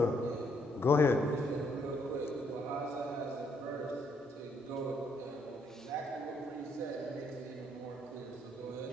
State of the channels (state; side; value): normal; both; correlation 0.71